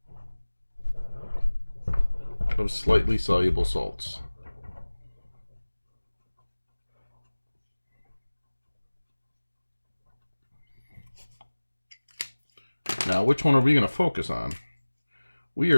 of slightly soluble salts. Now, which one are we going to focus on? We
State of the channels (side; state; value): both; inverted; correlation -1.00